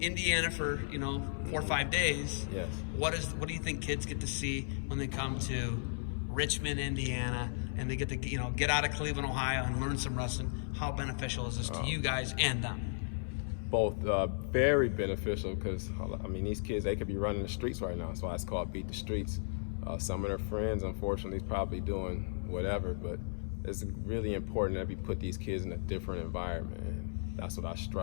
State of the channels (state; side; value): silent; right; 54 dB below the other